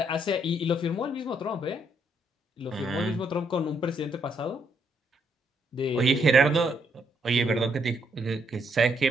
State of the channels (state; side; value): normal; both; correlation 0.73